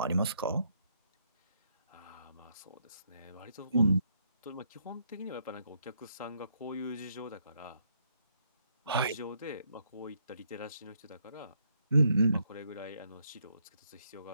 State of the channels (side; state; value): both; inverted; correlation -0.74